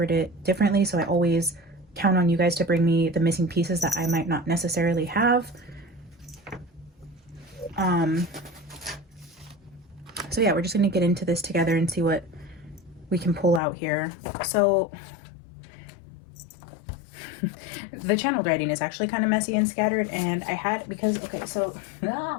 it differently. So I always count on you guys to bring me the missing pieces that I might not necessarily have. So yeah, we're just going to get into this together and see what we can pull out here. So the channeled writing is actually kind of messy and scattered, and I had, because, okay, so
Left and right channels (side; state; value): right; drops out; at 13.6 s